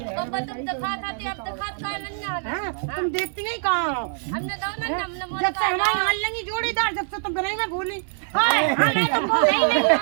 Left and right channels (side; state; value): left; silent; digital silence